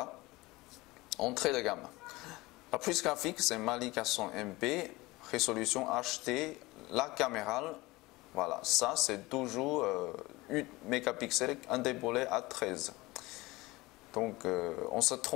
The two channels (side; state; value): right; quieter; 21.1 dB